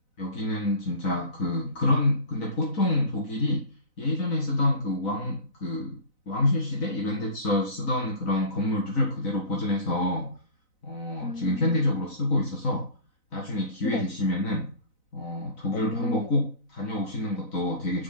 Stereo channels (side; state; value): right; late; 4.0 ms